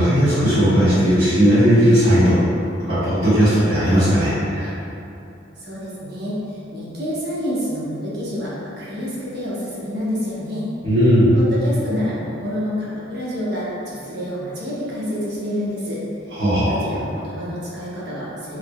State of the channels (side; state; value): both; normal; correlation 0.71